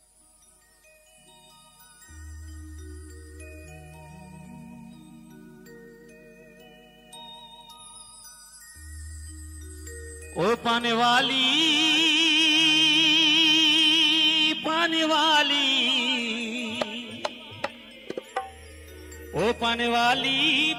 ओ पाने वाली पाने वाली ओ पाने वाली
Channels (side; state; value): both; identical; correlation 1.00